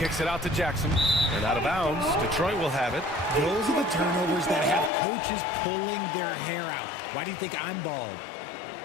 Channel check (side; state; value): right; drops out; at 4.9 s